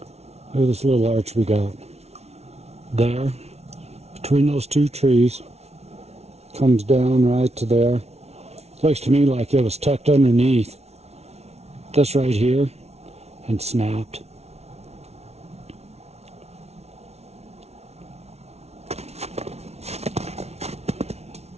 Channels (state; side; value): late; left; 0.31 ms